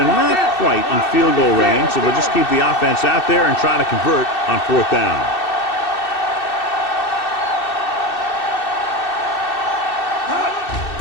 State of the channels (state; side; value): late; right; 2.6 ms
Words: not quite in field goal range, so they'll just keep the offense out there and try to convert on 4th down.